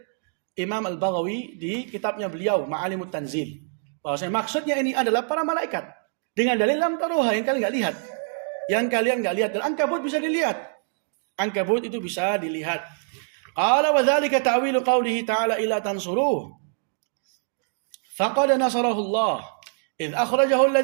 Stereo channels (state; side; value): silent; left; digital silence